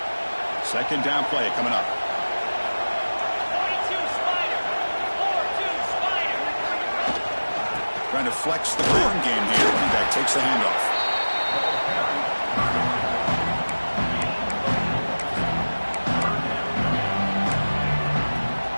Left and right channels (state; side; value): inverted; both; correlation -1.00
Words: Second down play coming up. Trying to flex the ground game here. Running back takes the handoff.